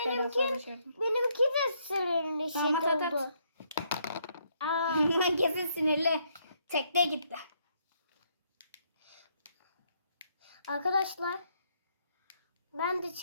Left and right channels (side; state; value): both; inverted; correlation -0.72